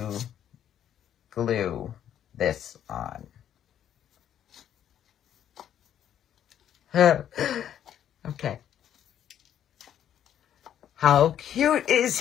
glue this on. Okay. How cute is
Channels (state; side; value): quieter; right; 10.2 dB